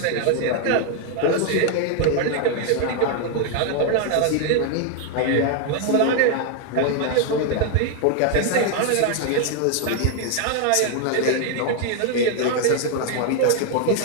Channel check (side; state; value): both; different; correlation 0.00